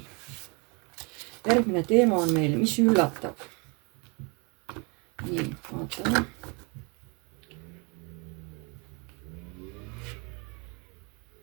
Järgmine teema on meil, mis üllatab. Nii, vaatame.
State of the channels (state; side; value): quieter; left; 31.5 dB